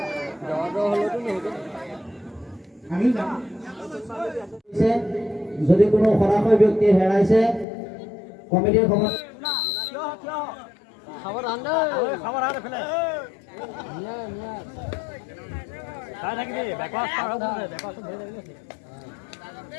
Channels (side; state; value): right; drops out; at 7.7 s